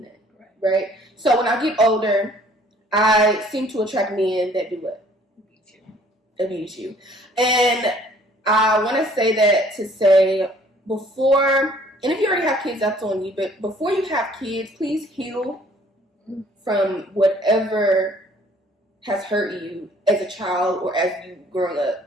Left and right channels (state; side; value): normal; both; correlation 0.57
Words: that, right? So when I get older, I seem to attract men that do what? Abuse you. And I want to say that to say, before, and if you already have kids, that's on you, but before you have kids, please heal from whatever has hurt you as a child or as you growing